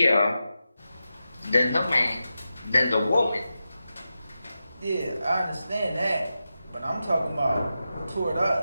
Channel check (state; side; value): inverted; both; correlation -0.91